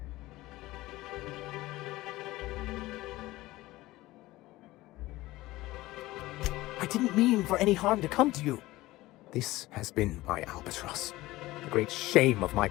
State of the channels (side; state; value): right; quieter; 18.2 dB